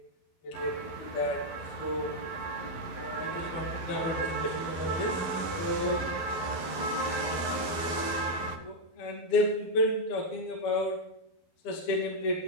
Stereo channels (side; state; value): right; late; 11 ms